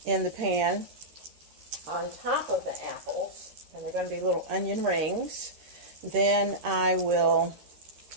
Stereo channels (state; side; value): late; left; 13 ms